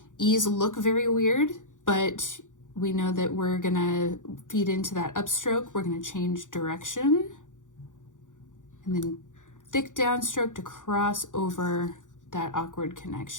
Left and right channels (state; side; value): late; right; 0.87 ms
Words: E's look very weird, but we know that we're gonna feed into that upstroke. We're gonna change direction. And then thick downstroke to cross over that awkward